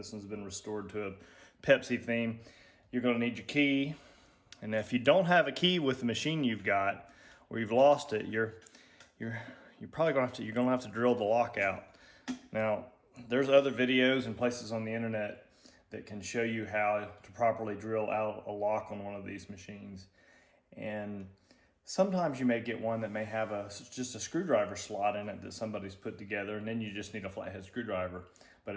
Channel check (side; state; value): both; identical; correlation 1.00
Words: one's been restored to a Pepsi theme. You're gonna need your key. And if you don't have a key with the machine you've got, or you've lost it, you're probably gonna have to drill the lock out. Now, there's other videos and places on the internet that can show you how to properly drill out a lock on one of these machines. And sometimes you may get one that may have just a screwdriver slot in it that somebody's put together, and then you just need a flathead screwdriver. But